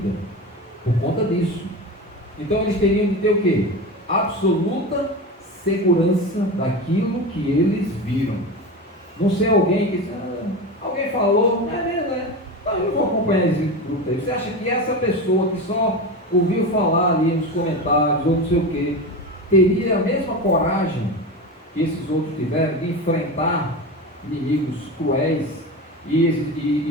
por conta disso. Então eles teriam de ter o quê? Absoluta segurança daquilo que eles viram. Não ser alguém que alguém falou, não é mesmo, né? Então eu vou acompanhar esse grupo aí. Você acha que essa pessoa que só ouviu falar ali nos comentários ou não sei o quê, teria a mesma coragem que esses outros tiveram de enfrentar inimigos cruéis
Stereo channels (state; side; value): normal; both; correlation 0.24